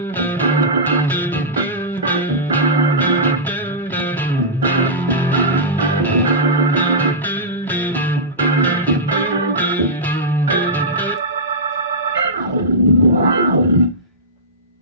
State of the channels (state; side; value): normal; both; correlation -0.14